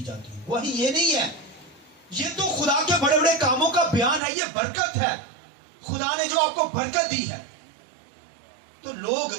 جاتی ہیں. گواہی یہ نہیں ہے، یہ تو خدا کے بڑے بڑے کاموں کا بیان ہے، یہ برکت ہے. خدا نے جو آپ کو برکت دی ہے، تو لوگ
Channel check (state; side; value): drops out; left; at 4.2 s